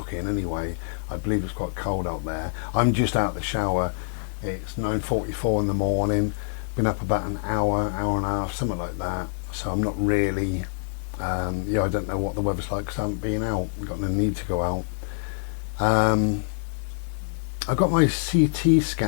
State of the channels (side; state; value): right; silent; digital silence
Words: anyway. I believe it's quite cold out there. I'm just out of the shower. It's 9:44 in the morning. Been up about an hour and a half, something like that. So I'm not really, I don't know what the weather's like because I haven't been out. I've got no need to go out. I got my CT